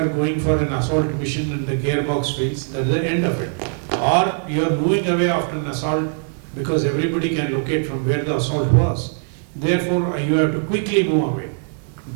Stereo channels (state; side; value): silent; left; 58 dB below the other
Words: going for an assault mission and the gearbox fails, that is the end of it. Or you are moving away after an assault because everybody can locate from where the assault was. Therefore, you have to quickly move away.